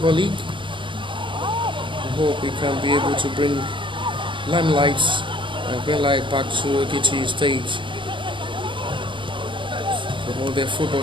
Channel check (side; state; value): left; late; 0.24 ms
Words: League. We hope we can be able to bring limelights and bring light back to Ekiti State, promote their football